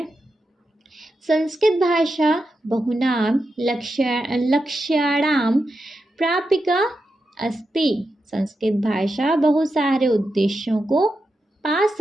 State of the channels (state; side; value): normal; both; correlation 0.88